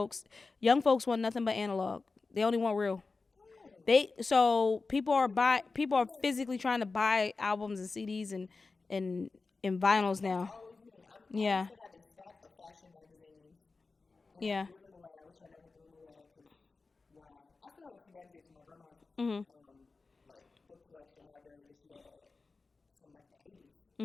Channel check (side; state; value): right; quieter; 4.0 dB